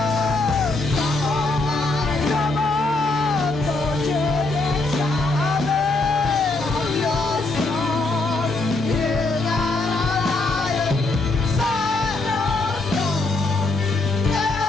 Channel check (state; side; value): quieter; right; 3.2 dB